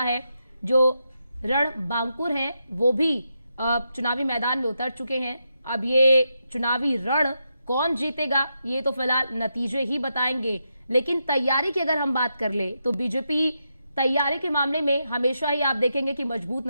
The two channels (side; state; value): both; inverted; correlation -0.84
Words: है। जो रण बांकुर हैं वो भी चुनावी मैदान में उतर चुके हैं। अब ये चुनावी रण कौन जीतेगा ये तो फिलहाल नतीजे ही बताएंगे। लेकिन तैयारी की अगर हम बात कर ले तो बीजेपी तैयारी के मामले में हमेशा ही आप देखेंगे कि मजबूत